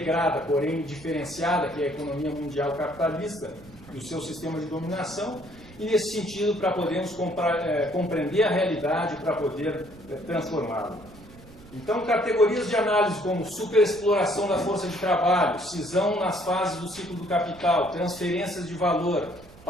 porém diferenciada, que é a economia mundial capitalista e o seu sistema de dominação, e nesse sentido para podermos compreender a realidade, para poder transformá-la. Então, categorias de análise como superexploração da força de trabalho, cisão nas fases do ciclo do capital, transferências de valor,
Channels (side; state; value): right; noise; rumble, 22 dB below the sound